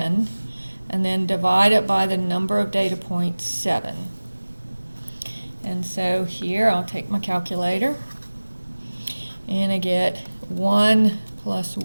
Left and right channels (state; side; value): inverted; both; correlation -1.00